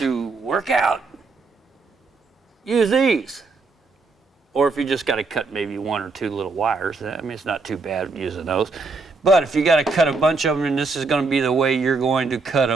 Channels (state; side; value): quieter; left; 3.9 dB